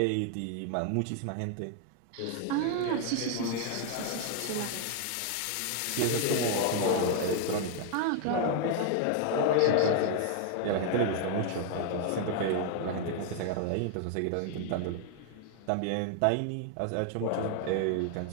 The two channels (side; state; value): both; different; correlation 0.00